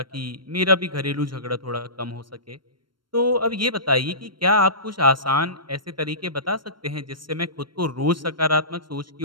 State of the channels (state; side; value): late; left; 0.72 ms